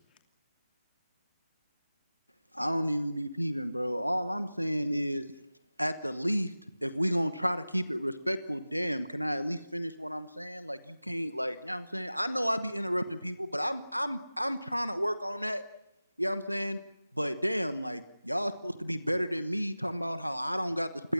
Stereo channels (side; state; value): both; inverted; correlation -0.97